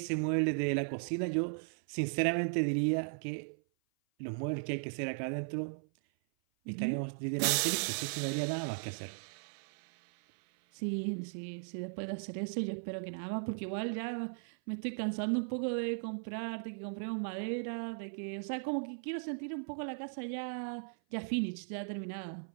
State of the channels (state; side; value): silent; left; 53 dB below the other